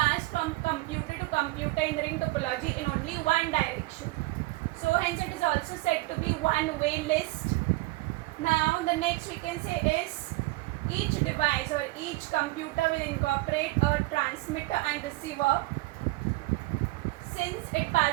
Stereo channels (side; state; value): left; quieter; 20.8 dB